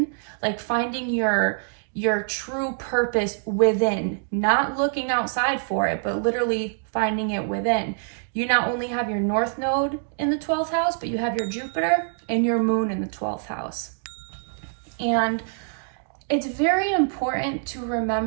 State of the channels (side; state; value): left; silent; digital silence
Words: like finding your true purpose within, not looking outside for it, but literally finding it within. You not only have your North Node in the 12th house, but you have your Jupiter and your Moon in the 12th house. And it's very important to